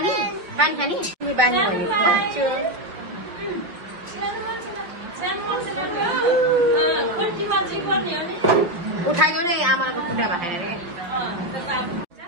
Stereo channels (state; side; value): late; left; 5.6 ms